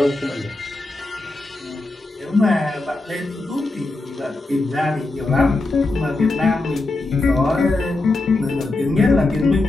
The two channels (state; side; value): quieter; right; 3.0 dB